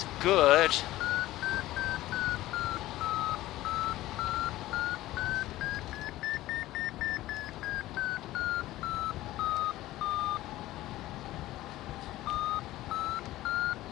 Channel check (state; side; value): quieter; right; 16.1 dB